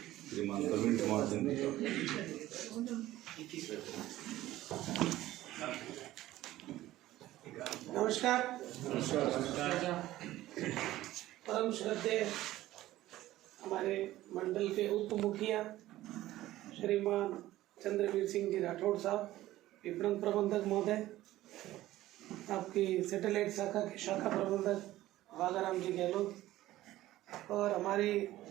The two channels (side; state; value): left; quieter; 15.5 dB